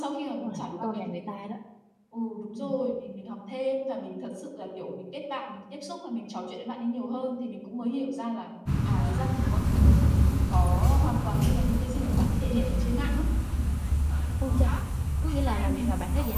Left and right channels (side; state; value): both; identical; correlation 1.00